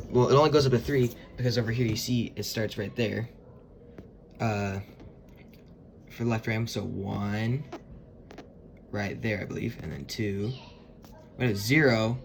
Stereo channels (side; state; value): both; identical; correlation 1.00